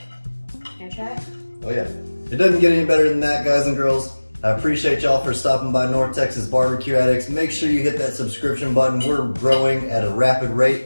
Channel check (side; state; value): both; inverted; correlation -1.00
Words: I try it? Oh yeah. It doesn't get any better than that, guys and girls. I appreciate y'all for stopping by North Texas Barbecue Addicts. Make sure you hit that subscription button. We're growing at a rapid